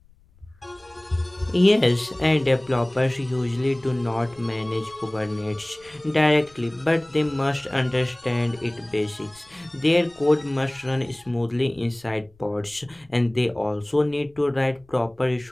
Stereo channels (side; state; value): left; noise; rumble, 30 dB below the sound